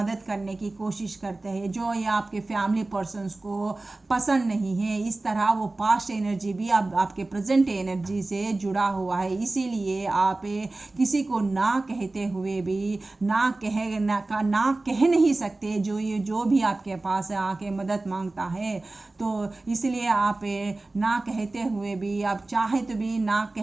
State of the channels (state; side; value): quieter; left; 3.1 dB